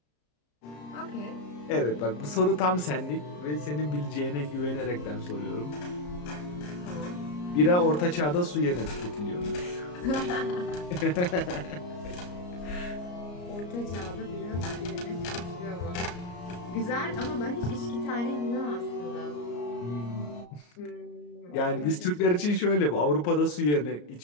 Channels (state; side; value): late; right; 34 ms